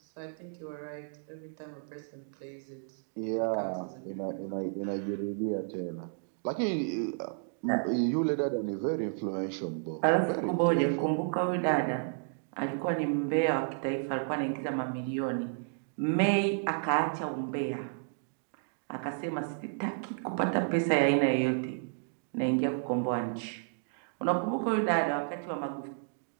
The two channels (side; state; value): left; silent; digital silence